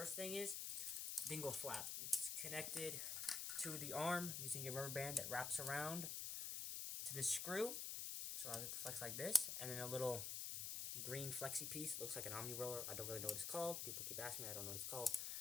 thing is Dingle Flap. It's connected to the arm using a rubber band that wraps around to the screw, which allows it to flex like this, and then a little green flexi piece. It looks like an omni roller. I don't really know what it's called. People keep asking me. I don't know what it's called.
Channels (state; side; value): noise; left; hiss, 2 dB below the sound